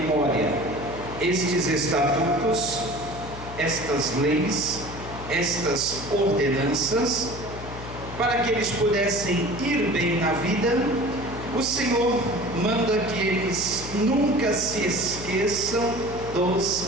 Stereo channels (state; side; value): noise; left; hum, 12 dB below the sound